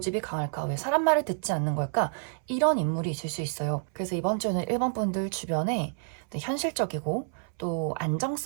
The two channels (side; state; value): left; silent; 59 dB below the other